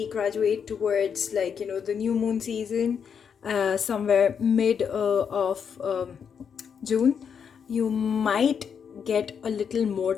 graduate towards, like, you know, the new moon season, somewhere mid of June, you might get a little more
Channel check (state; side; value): quieter; right; 7.1 dB